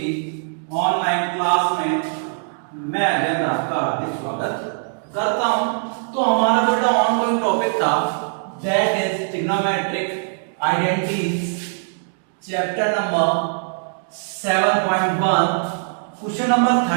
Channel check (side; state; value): left; silent; digital silence